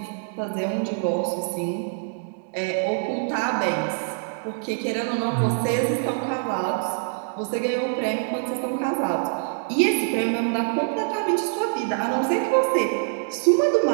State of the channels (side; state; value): left; silent; digital silence